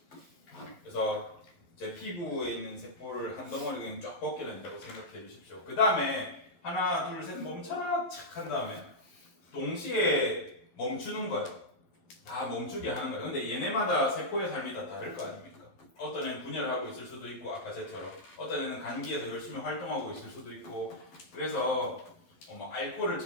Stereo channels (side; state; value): right; late; 11 ms